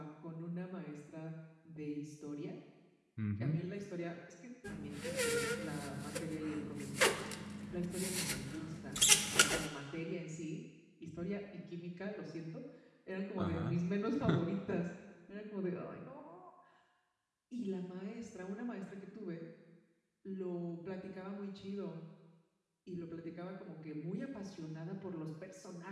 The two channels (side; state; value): both; identical; correlation 1.00